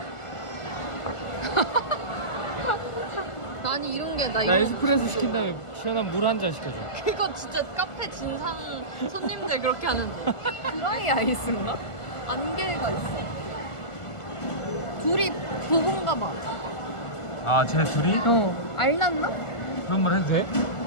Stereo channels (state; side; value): late; right; 1.5 ms